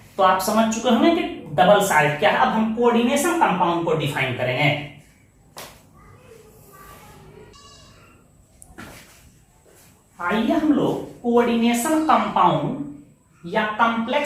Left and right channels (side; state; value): both; identical; correlation 1.00